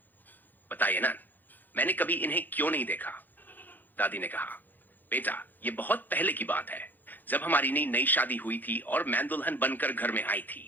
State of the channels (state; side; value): late; right; 0.086 ms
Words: बताइए ना, मैंने कभी इन्हें क्यों नहीं देखा? दादी ने कहा, बेटा, ये बहुत पहले की बात है, जब हमारी नई नई शादी हुई थी और मैं दुल्हन बनकर घर में आई थी।